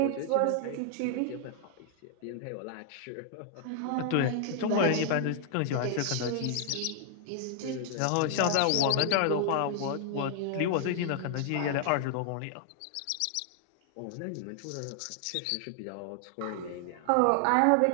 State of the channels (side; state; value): both; different; correlation 0.00